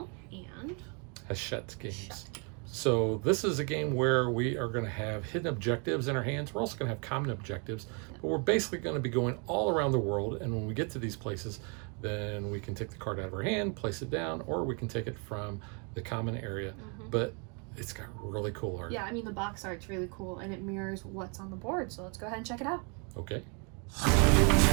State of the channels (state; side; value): quieter; left; 35.9 dB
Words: and Hachette Games. So this is a game where we are going to have hidden objectives in our hands. We're also going to have common objectives, but we're basically going to be going all around the world. And when we get to these places, then we can take the card out of our hand, place it down, or we can take it from the common area. But it's got really cool art. Yeah, I mean the box art's really cool and it mirrors what's on the board. So let's go ahead and check it out. Okay.